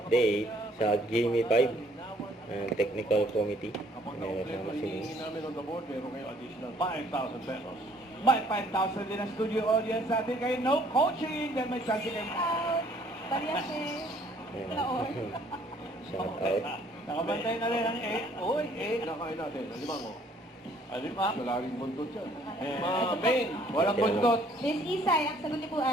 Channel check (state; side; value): normal; both; correlation 0.61